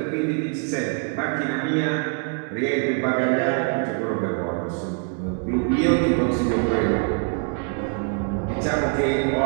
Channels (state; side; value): quieter; left; 39.6 dB